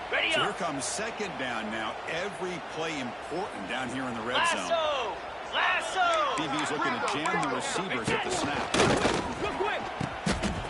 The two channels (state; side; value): identical; both; correlation 1.00